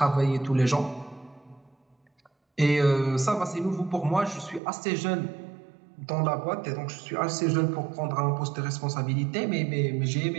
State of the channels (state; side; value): drops out; left; at 4.6 s